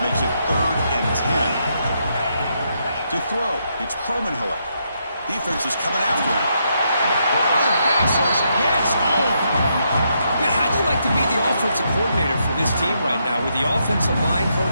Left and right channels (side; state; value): both; inverted; correlation -0.78